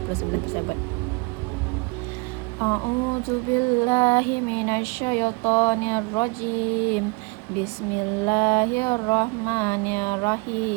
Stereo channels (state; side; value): quieter; left; 28.9 dB